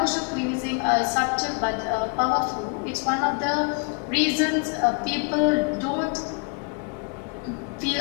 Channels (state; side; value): quieter; right; 33.4 dB